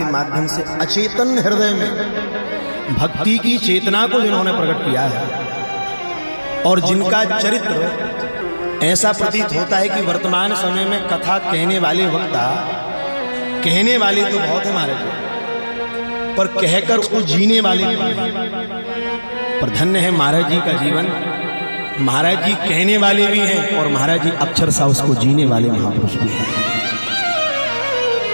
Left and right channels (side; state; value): both; inverted; correlation -1.00